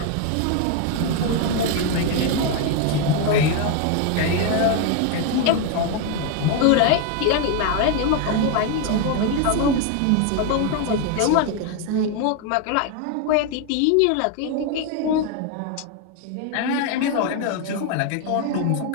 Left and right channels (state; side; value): different; both; correlation 0.01